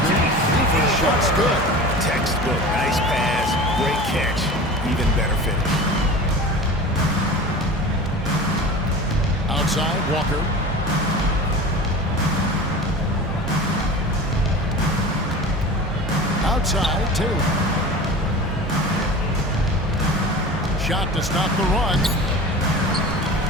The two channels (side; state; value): both; normal; correlation 0.35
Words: Buford's shot's good. Textbook. Nice pass. Great catch. Even better finish. Outside, Walker. Outside, Taylor. Shot to stop the run.